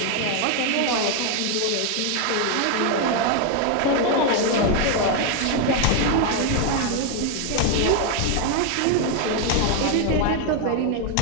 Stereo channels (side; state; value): both; different; correlation 0.01